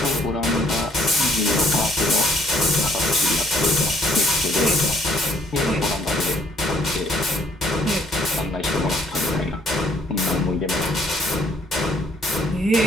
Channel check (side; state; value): both; normal; correlation 0.64